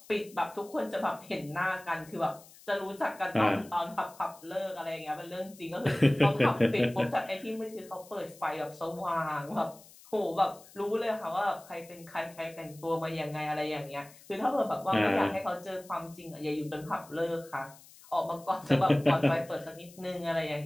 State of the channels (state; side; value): noise; left; hiss, 22 dB below the sound